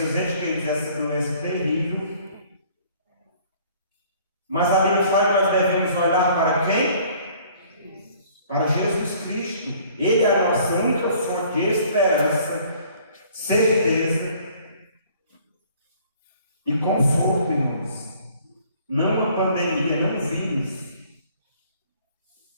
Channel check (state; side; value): inverted; both; correlation -0.56